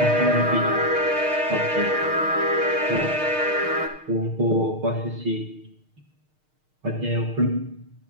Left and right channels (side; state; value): left; late; 6.5 ms